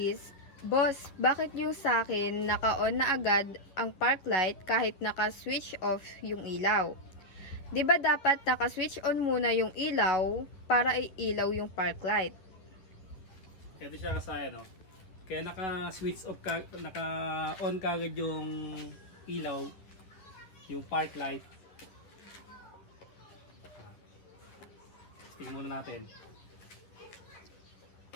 "Boss, bakit yung sa akin naka-on na agad ang park light kahit naka-switch off yung ilaw? Di ba dapat naka-switch on muna yung ilaw para iilaw yung park light?" Ito siya Kasayan, no? Kaya naka-switch off ka, naka-on kagad yung ilaw, yung park light. Tingnan muna natin.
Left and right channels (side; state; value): right; late; 10 ms